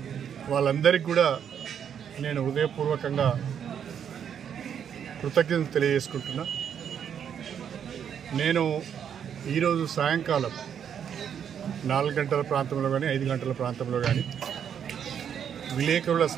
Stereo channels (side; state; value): left; quieter; 8.4 dB